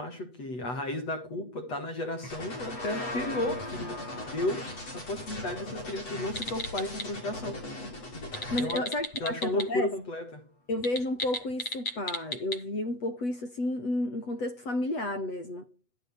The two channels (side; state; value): right; late; 8.1 ms